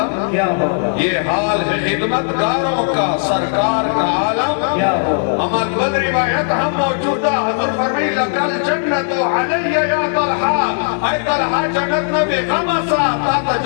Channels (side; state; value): right; silent; 64 dB below the other